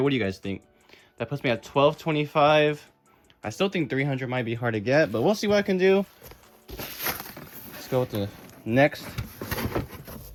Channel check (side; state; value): both; identical; correlation 1.00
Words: What do you guys think? That puts me at 1225. I still think 300 might be hard to get, but we'll see what I can do. Let's go with the next